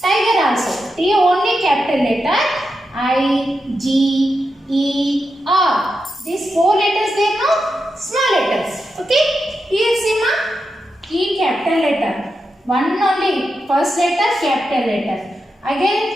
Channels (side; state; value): both; normal; correlation 0.87